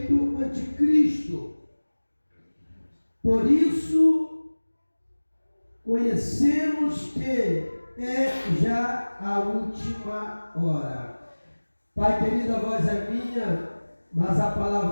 anticristo. Por isso, conhecemos que é já a última hora. Pai querido, a voz é minha, mas a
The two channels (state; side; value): inverted; both; correlation -1.00